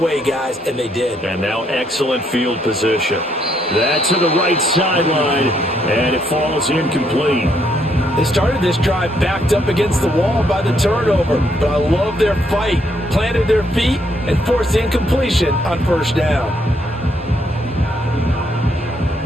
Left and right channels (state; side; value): normal; both; correlation 0.72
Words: guys. And they did. And now excellent field position. That's to the right sideline, and it falls incomplete. They started this drive backed up against the wall by the turnover, but I love their fight. Planted their feet and forced incompletion on 1st down.